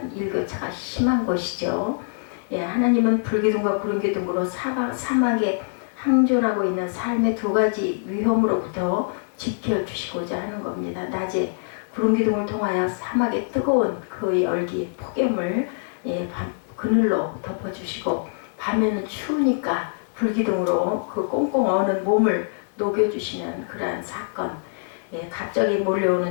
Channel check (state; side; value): silent; right; 60 dB below the other